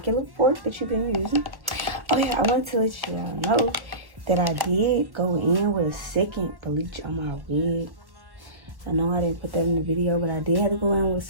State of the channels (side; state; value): left; late; 1.4 ms